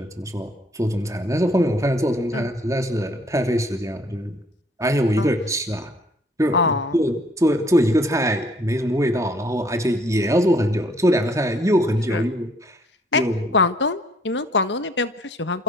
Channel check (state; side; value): normal; both; correlation 0.62